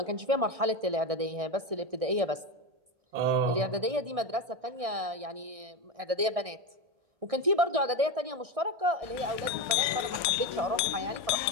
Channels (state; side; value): late; left; 1.6 ms